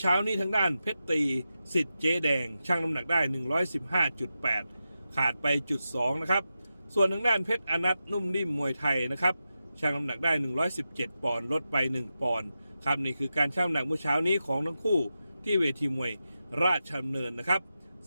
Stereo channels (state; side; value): inverted; both; correlation -0.90